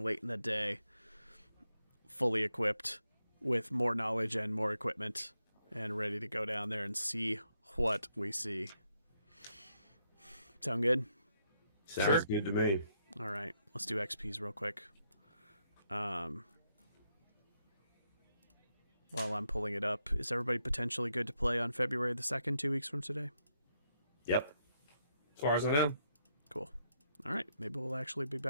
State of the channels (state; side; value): inverted; both; correlation -0.78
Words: late in the day, fully equipped with more knowledge and more equipment, and ready to go down there and see what we see. Sound good? Sounds good to me. All right, let's do XPs real quick. While I'm pulling it up, is everybody potentially good to play on February the 2nd, 2 weeks from today? Yep. As far as I know. Cool. All right, maybe we'll actually be